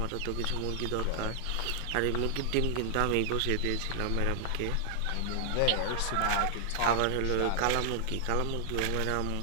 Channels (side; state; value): both; different; correlation 0.00